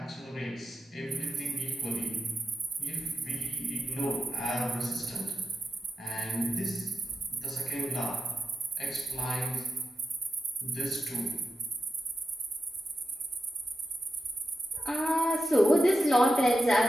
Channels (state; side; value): normal; both; correlation 0.89